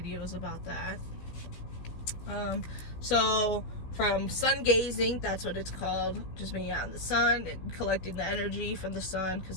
about that. So from sun gazing, that's what it's called, just being out in the sun and collecting the energy from the sun, because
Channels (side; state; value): right; late; 16 ms